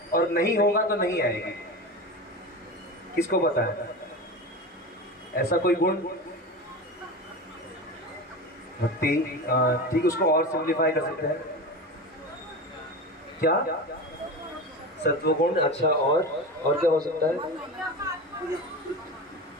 और नहीं होगा तो नहीं आएगी? किसको पता है ऐसा कोई गुण? भक्ति, ठीक, उसको और सिंप्लीफाई कर सकते हैं। क्या? सत्वगुण। अच्छा, और क्या हो सकता है?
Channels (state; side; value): normal; both; correlation 0.26